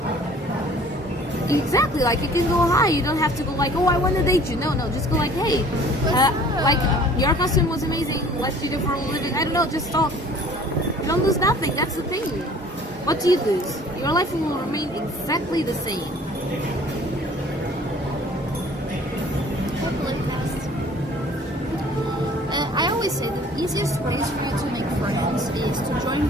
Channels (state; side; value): normal; both; correlation 0.51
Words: Exactly, like you can go high. You don't have to go like, oh, I want to date you. No, just go like, hey, like your costume was amazing. What do you do for a living? I don't know, just talk. You don't lose nothing. That's the thing. What do you lose? Your life will remain exactly the same. I always say the easiest ways for you to make friends is to join